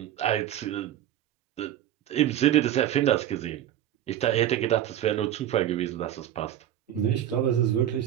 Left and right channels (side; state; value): left; quieter; 11.7 dB